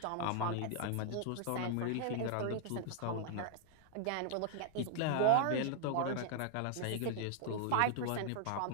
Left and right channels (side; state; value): both; different; correlation -0.01